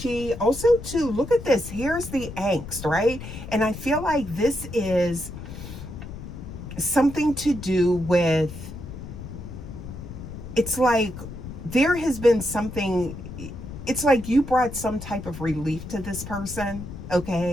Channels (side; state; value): left; noise; rumble, 11 dB below the sound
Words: also too, look at this, here's the angst, right? And I feel like this is something to do with, it's like there has been something, it's like you brought some type of relief to this person,